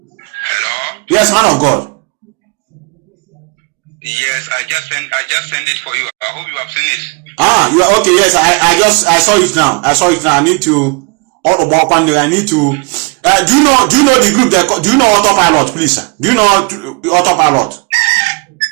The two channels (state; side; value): quieter; left; 31.3 dB